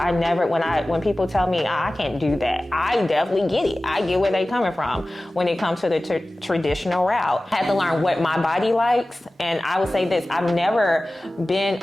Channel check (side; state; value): both; normal; correlation 0.97